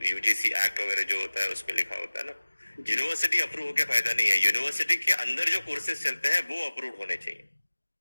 यूजीसी एक्ट वगैरह जो होता है उस पर लिखा होता है ना। यूनिवर्सिटी अप्रूव होकर फायदा नहीं है, यूनिवर्सिटी के अंदर जो कोर्सेज चलते हैं वो अप्रूव होने चाहिए।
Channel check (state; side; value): inverted; both; correlation -1.00